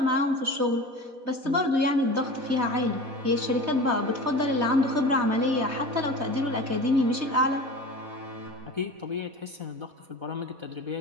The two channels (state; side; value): late; left; 4.1 ms